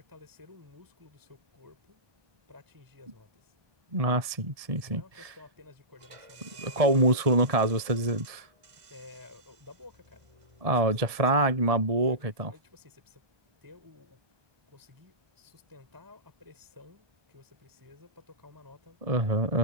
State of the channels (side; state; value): left; late; 1.7 ms